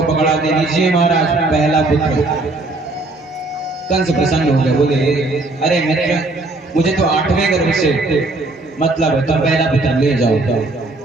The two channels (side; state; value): left; quieter; 3.0 dB